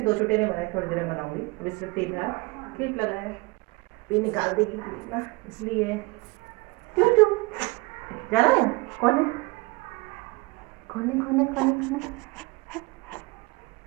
2 छोटे नहीं बनाए, थोड़ी देर में बनाऊंगी। अभी सिर्फ 3 क्लिप लगाया है, ये निकाल देगी क्लिप ना, इसलिए क्यों क्यों जाना है। कौन है कौन है कौन है कौन है कौन है।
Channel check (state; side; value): quieter; left; 25.2 dB